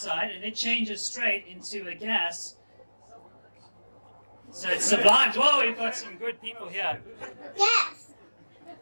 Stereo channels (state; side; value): inverted; both; correlation -1.00